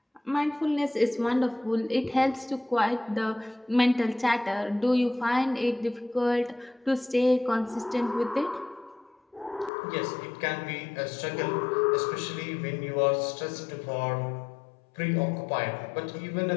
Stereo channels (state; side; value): drops out; right; at 9.7 s